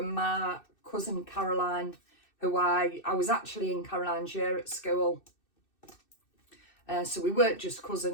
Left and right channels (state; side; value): late; right; 2.6 ms